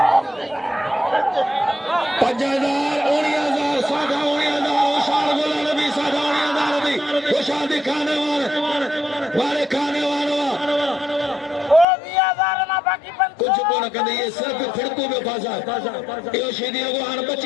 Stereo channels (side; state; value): right; drops out; at 11.9 s